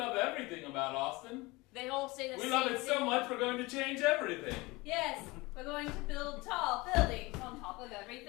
everything about Austin. They all say the We same love it thing. so much we're going to change everything. Yes, we're going to build tall buildings on top of everything.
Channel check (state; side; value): quieter; right; 22.9 dB